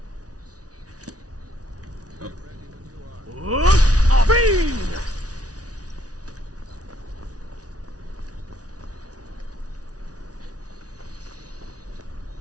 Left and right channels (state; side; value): late; left; 0.68 ms